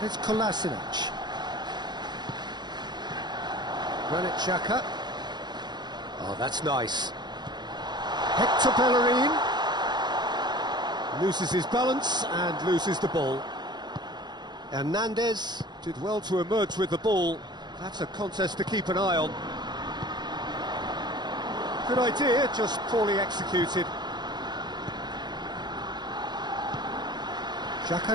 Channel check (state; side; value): late; left; 0.21 ms